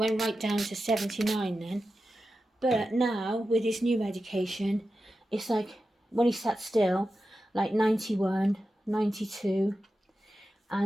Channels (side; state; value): both; normal; correlation 0.92